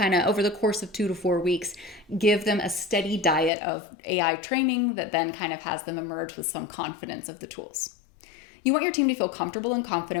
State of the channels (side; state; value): right; drops out; at 3.5 s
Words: of, over the course of 2 to 4 weeks, give them a steady diet of AI training that then kind of has them emerge with some confidence of the tools. You want your team to feel comfortable and